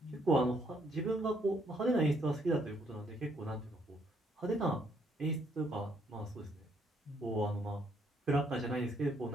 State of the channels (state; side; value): normal; both; correlation 0.70